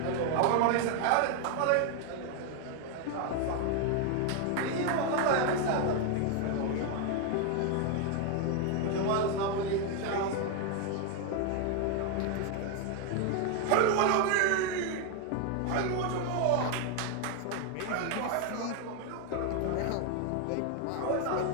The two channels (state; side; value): different; both; correlation 0.01